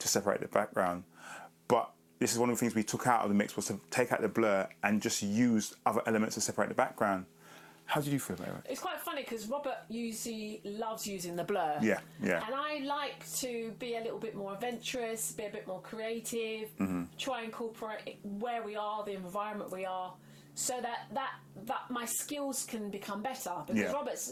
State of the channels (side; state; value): both; identical; correlation 1.00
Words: separate the background. But this is one of the things we took out of the mix, was to take out the blur and just use other elements to separate the background. How did you feel about it? It's quite funny because Robert usually loves using the blur. Yeah, yeah. And I like to be a little bit more adventurous, be a bit more creative, try and incorporate where we are, the environment we are, so that my skills can become better. Because